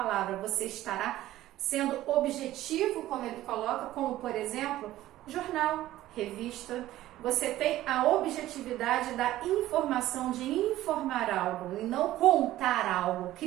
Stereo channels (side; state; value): left; quieter; 14.8 dB